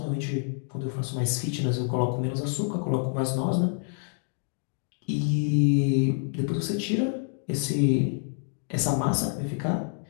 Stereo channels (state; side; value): silent; right; 58 dB below the other